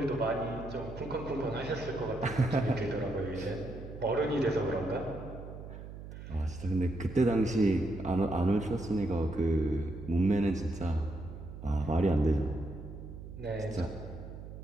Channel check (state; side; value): noise; right; hum, 12 dB below the sound